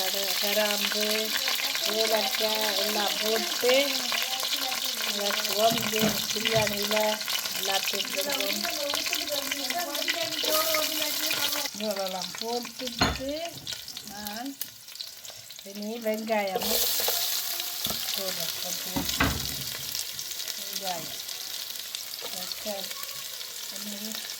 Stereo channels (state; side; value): identical; both; correlation 1.00